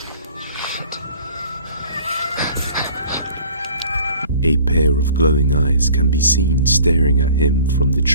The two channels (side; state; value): both; inverted; correlation -0.49